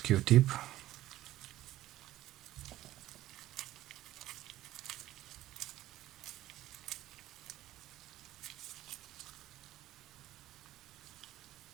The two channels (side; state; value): left; quieter; 14.8 dB